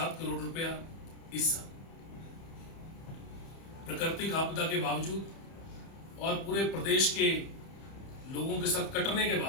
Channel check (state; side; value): late; right; 30 ms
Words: करोड़ रुपया इस साल। प्राकृतिक आपदा के बावजूद और पूरे प्रदेश के लोगों के साथ कटने के